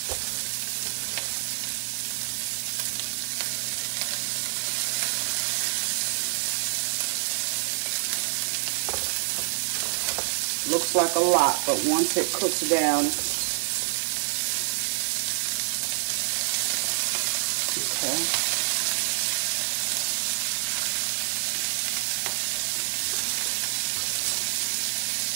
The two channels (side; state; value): left; silent; digital silence